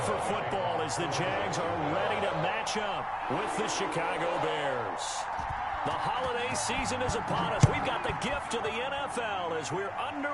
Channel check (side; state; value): both; identical; correlation 1.00